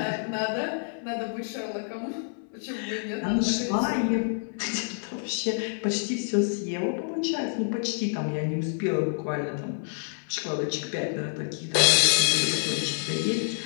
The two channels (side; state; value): right; silent; 60 dB below the other